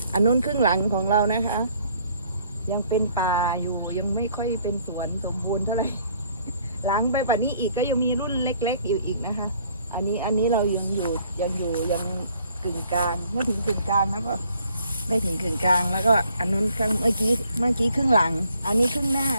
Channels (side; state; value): both; inverted; correlation -0.62